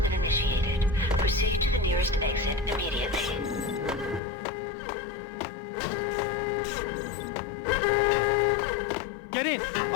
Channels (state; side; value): drops out; right; at 4.2 s